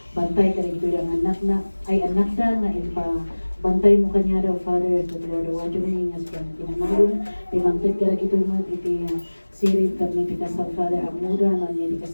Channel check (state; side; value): inverted; both; correlation -1.00